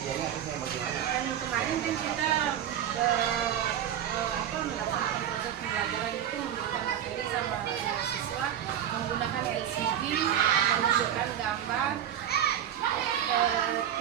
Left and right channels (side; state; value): left; quieter; 10.2 dB